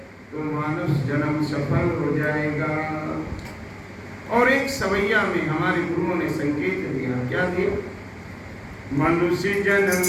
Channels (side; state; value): both; identical; correlation 1.00